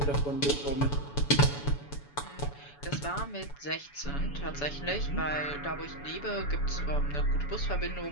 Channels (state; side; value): late; right; 7.0 ms